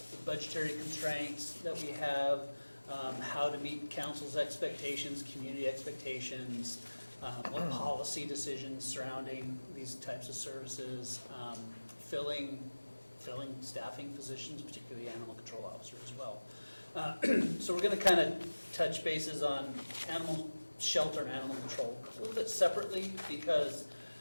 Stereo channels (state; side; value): inverted; both; correlation -1.00